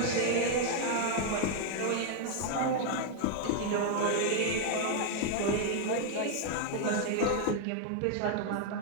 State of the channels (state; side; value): different; both; correlation 0.00